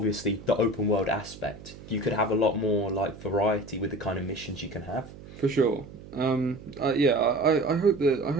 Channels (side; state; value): right; noise; hum, 17 dB below the sound